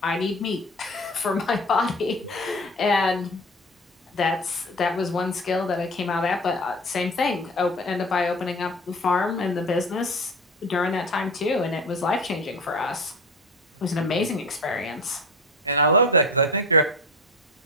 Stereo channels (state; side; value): normal; both; correlation 0.32